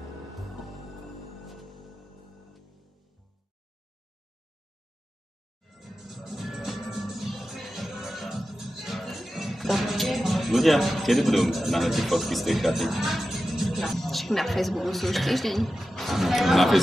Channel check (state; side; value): normal; both; correlation 0.93